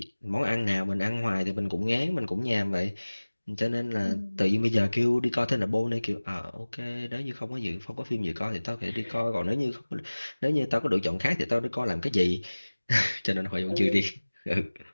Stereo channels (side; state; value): both; inverted; correlation -1.00